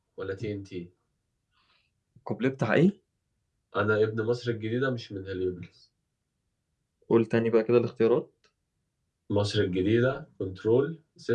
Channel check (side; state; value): both; identical; correlation 1.00